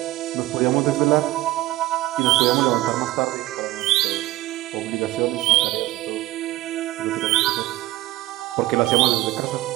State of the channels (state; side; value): quieter; left; 17.4 dB